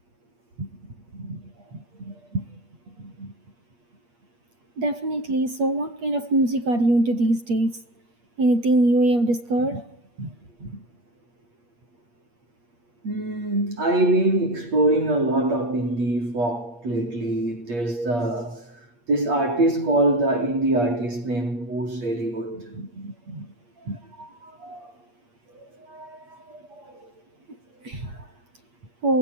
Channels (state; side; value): late; left; 8.5 ms